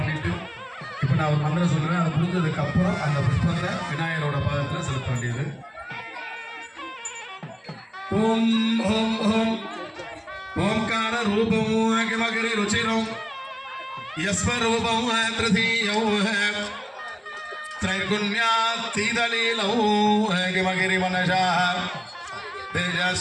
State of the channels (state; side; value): identical; both; correlation 1.00